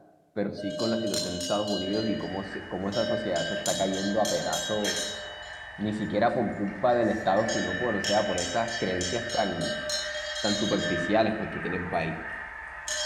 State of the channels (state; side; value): identical; both; correlation 1.00